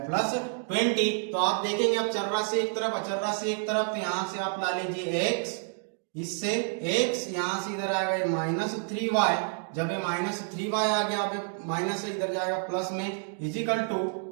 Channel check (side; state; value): left; silent; 59 dB below the other